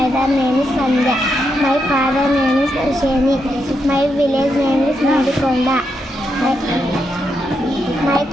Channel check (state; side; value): normal; both; correlation 0.82